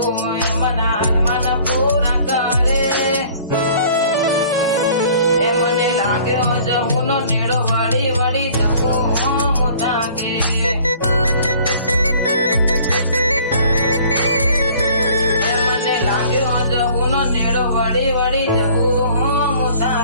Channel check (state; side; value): inverted; both; correlation -0.53